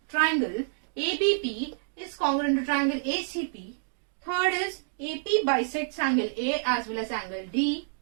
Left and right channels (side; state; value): left; silent; digital silence